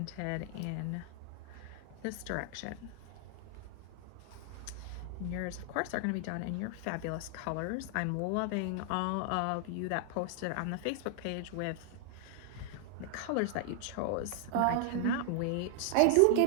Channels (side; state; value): both; different; correlation 0.00